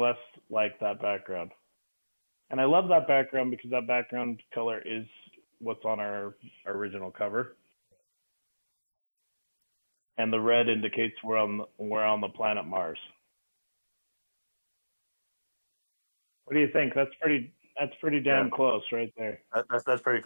like that background. And I love that background because that background color is what's on our original cover. Right. I think, And the red indicates we're on the planet Mars. What do you think? That's pretty damn close right there. That's pretty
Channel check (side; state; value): both; inverted; correlation -1.00